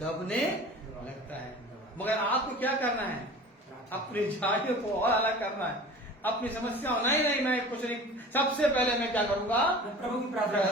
लगता है। मगर आपको क्या करना है, अपनी झाड़ियों को और अलग करना है, अपनी समस्या नहीं, मैं कुछ नहीं, सबसे पहले मैं क्या करूंगा, प्रभु की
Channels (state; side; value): normal; both; correlation 0.40